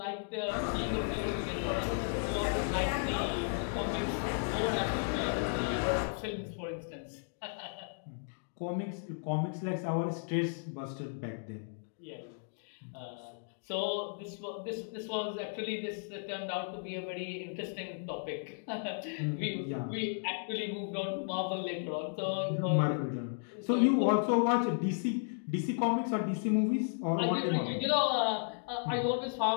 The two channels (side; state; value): right; silent; digital silence